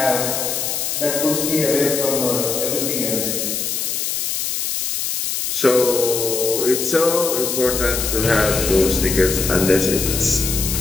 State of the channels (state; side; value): noise; left; hiss, 1 dB below the sound